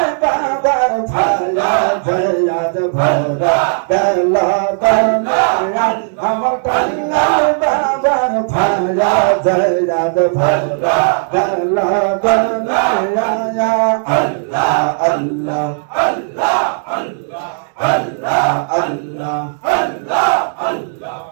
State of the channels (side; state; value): left; silent; digital silence